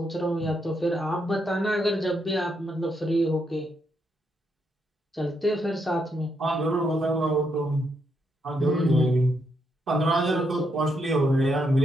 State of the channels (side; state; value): both; normal; correlation 0.78